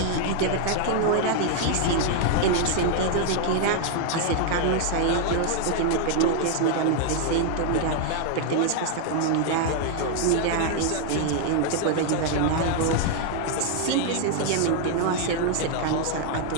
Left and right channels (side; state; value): both; different; correlation 0.00